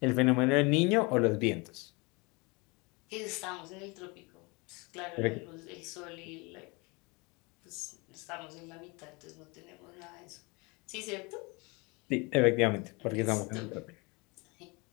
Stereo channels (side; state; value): right; quieter; 27.7 dB